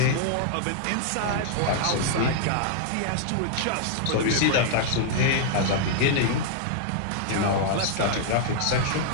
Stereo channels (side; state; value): both; different; correlation -0.01